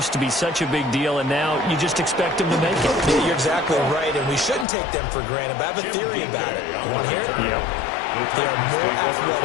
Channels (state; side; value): drops out; right; at 4.7 s